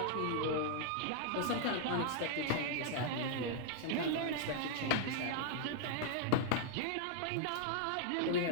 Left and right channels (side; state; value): both; different; correlation -0.01